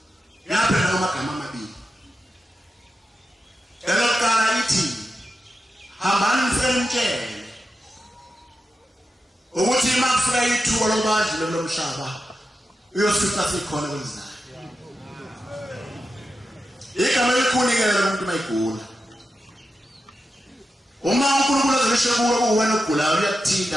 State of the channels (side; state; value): both; normal; correlation 0.90